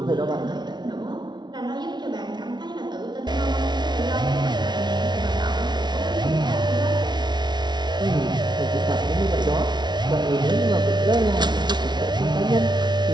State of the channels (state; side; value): late; left; 0.21 ms